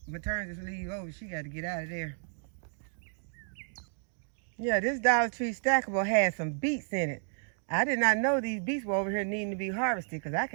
maternity leave over, she got to get out of there. Yeah, this Dollar Tree stackable has some beets in it. I did not know these beets were over here needing to be harvested, because I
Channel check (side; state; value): left; silent; 56 dB below the other